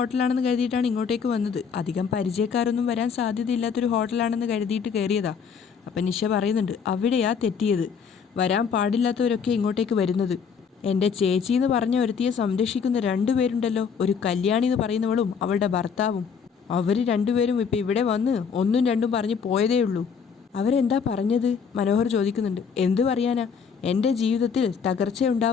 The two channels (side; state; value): right; quieter; 6.4 dB